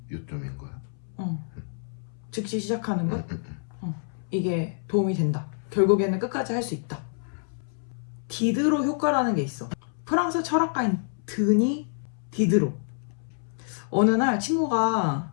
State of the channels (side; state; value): right; silent; 60 dB below the other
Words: 요점인 거야? 즉시 시작하는 것? 이게 도움이 된다. 결국에는 끝까지 할 수 있다. 디드로 효과라는 게 있어. 프랑스 철학가인 드니 디드로. 어느 날 친구가